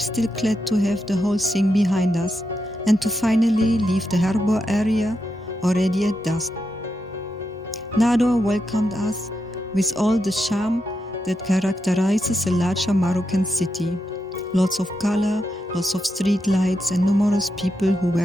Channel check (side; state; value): both; normal; correlation 0.85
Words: glad to have the whole thing behind us and to finally leave the harbor area already at dusk. Nador welcomed us with all the charm that characterizes a larger Moroccan city. Lots of color, lots of street lights and numerous people who